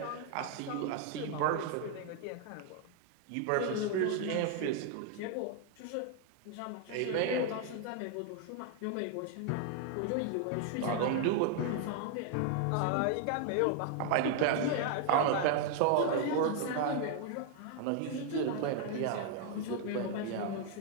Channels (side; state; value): both; different; correlation 0.00